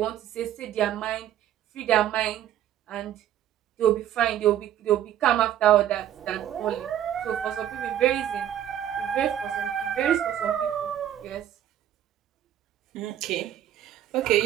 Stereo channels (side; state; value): left; quieter; 11.2 dB